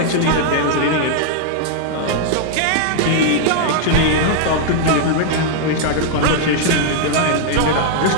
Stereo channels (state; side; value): different; both; correlation -0.01